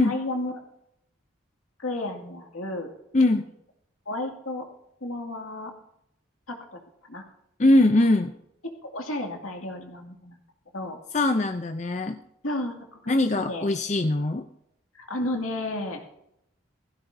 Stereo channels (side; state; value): both; normal; correlation 0.68